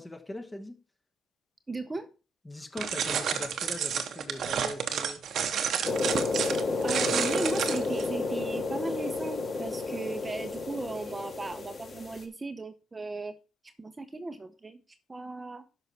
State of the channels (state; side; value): normal; both; correlation 0.77